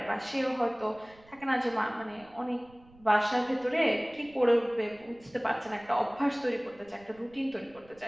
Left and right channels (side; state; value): right; noise; rumble, 26 dB below the sound